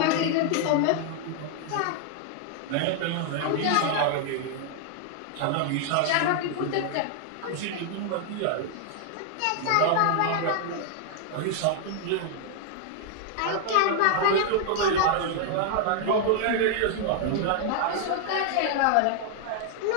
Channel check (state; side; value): different; both; correlation 0.00